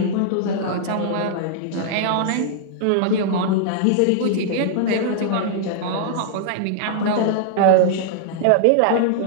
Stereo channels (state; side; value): different; both; correlation -0.01